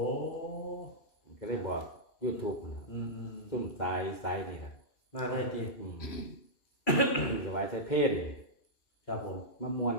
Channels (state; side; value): late; right; 2.3 ms